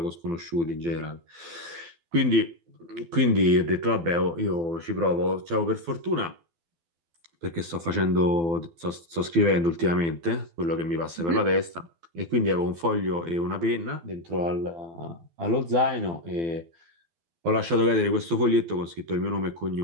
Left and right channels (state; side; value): late; left; 12 ms